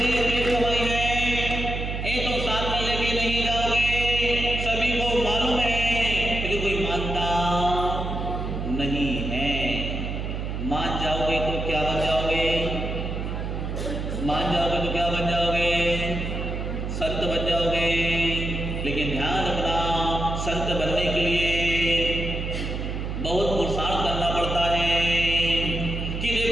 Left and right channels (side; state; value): right; noise; hum, 4 dB below the sound